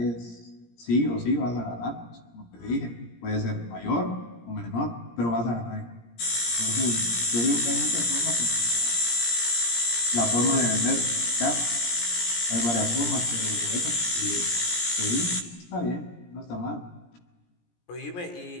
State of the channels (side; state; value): right; late; 17 ms